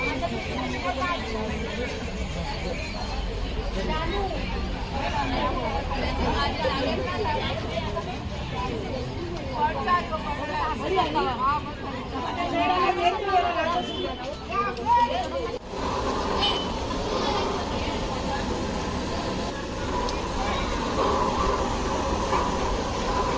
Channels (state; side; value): identical; both; correlation 1.00